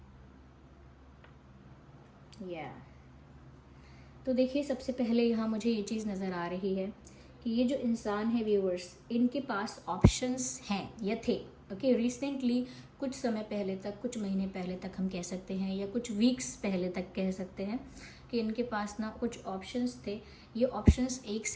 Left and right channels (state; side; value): identical; both; correlation 1.00